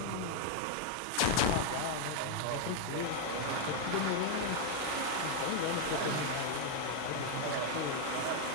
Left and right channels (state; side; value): different; both; correlation 0.01